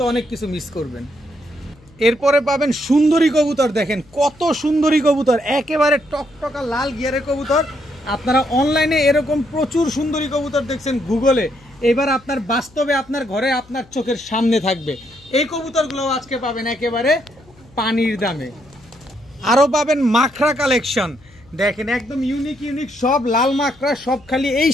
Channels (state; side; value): noise; left; hum, 27 dB below the sound